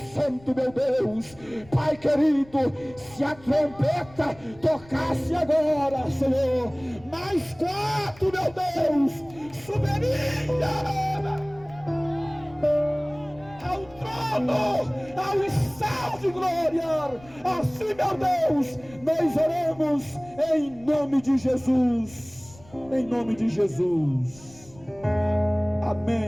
santo, meu Deus. Pai querido, se a trombeta tocasse agora, Senhor, mais 4, meu Deus, subiria ao trono, ao estado de glória. Assim, meu Deus, nós oramos em nome de Jesus. Em nome de Jesus.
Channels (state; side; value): noise; left; rumble, 23 dB below the sound